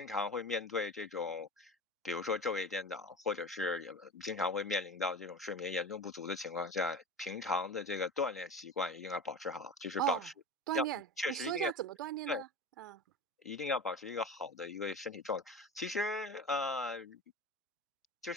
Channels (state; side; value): normal; both; correlation 0.31